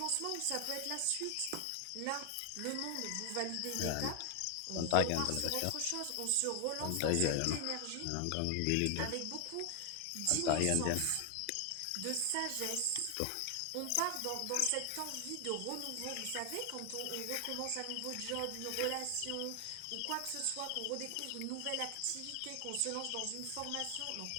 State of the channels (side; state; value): both; different; correlation 0.00